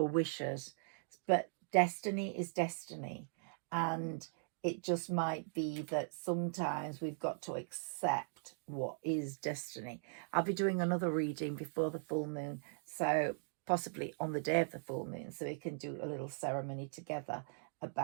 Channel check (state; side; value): silent; left; digital silence